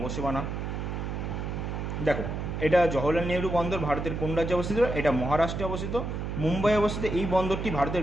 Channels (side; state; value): right; noise; hum, 4 dB below the sound